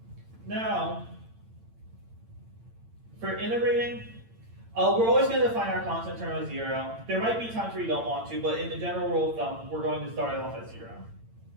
Now, for integrating, we're always going to define our constant term as 0. There might be times where you don't want to, but in the general rule of thumb, we're going to start it off at 0.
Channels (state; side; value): late; left; 8.8 ms